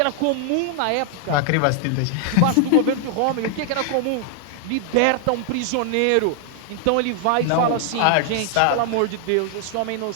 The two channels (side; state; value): both; different; correlation 0.00